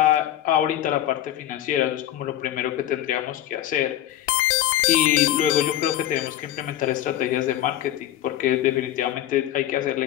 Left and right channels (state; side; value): quieter; right; 12.7 dB